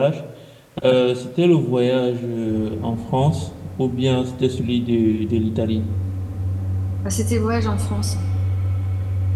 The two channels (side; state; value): both; identical; correlation 1.00